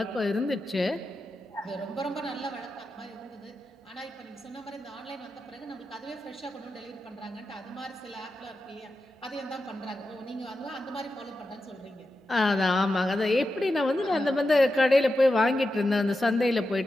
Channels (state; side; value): normal; both; correlation 0.90